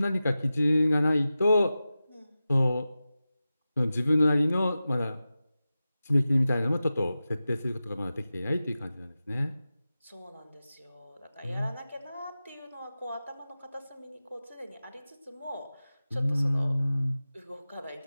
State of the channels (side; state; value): both; inverted; correlation -0.94